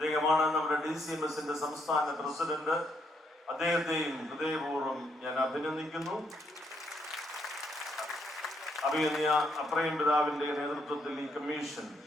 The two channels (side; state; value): both; normal; correlation 0.74